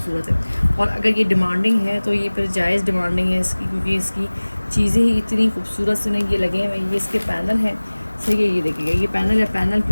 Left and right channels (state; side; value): inverted; both; correlation -1.00